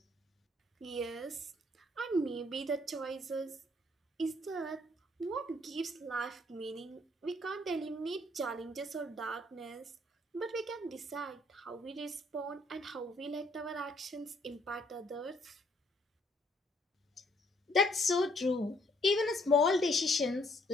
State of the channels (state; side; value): normal; both; correlation 0.67